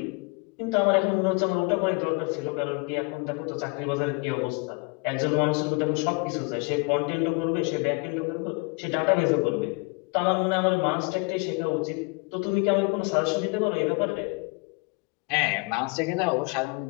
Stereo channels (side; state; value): right; quieter; 30.1 dB